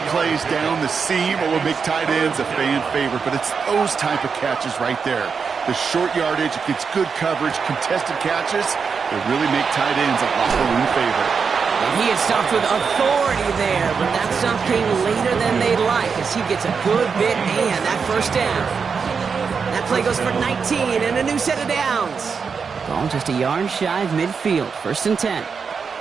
plays down the seam will make tight ends a fan favorite, but it's those type of catches right there. The short yardage, it gets good coverage, contested catches, they really make tight ends a locker room favorite. And he had stopped with authority there, but that stop came later than they'd like as he gets a good bit and that first down. That play goes for 19 and a new set of downs. Ball just a yard shy of midfield. First and 10.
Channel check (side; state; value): left; quieter; 5.7 dB